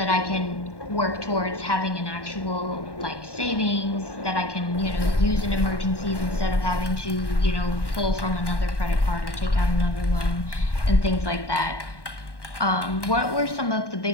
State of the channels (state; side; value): late; right; 1.2 ms